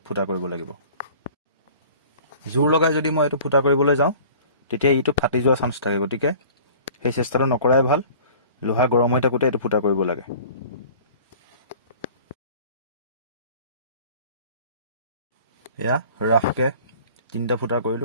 ফুটা কৰিব লাগিব। জোৰ লগাই যদি মই এইটো ফুটা কৰিবলৈ যাওঁ তেতিয়া ইটো ফাটি যোৱাৰ চান্স থাকে, গতিকে সেই চেষ্টাটো নকৰাই ভাল। লোহা গৰম হৈ থাকোঁতে এইটো ফুটা কৰিব লাগে। এয়া ৰাফকৈ 3টা ফুটা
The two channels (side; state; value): both; inverted; correlation -0.46